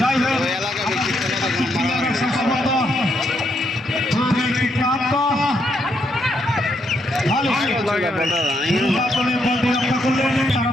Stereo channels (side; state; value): both; normal; correlation 0.77